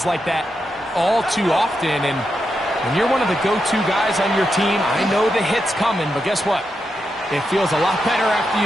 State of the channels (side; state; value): both; normal; correlation 0.86